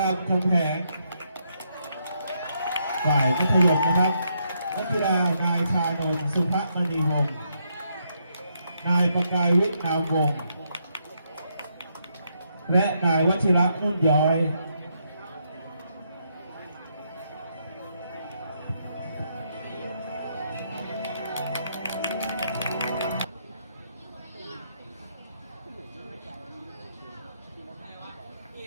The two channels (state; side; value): inverted; both; correlation -0.77